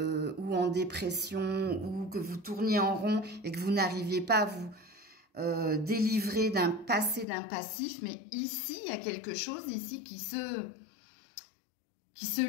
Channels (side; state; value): right; drops out; at 7.2 s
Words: ou en dépression ou que vous tourniez en rond et que vous n'arriviez pas à vous délivrer d'un passé, d'un passif. Mais ici, il y a quelque chose ici qui se